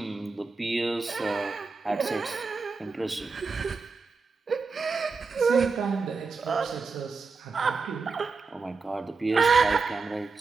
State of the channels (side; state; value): left; quieter; 4.5 dB